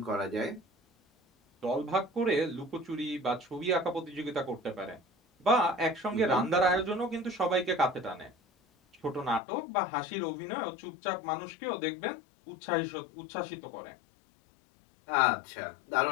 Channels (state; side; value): drops out; right; at 9.4 s